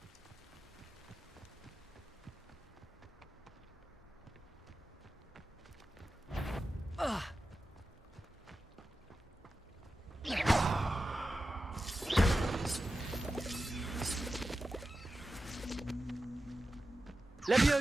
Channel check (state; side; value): normal; both; correlation 0.93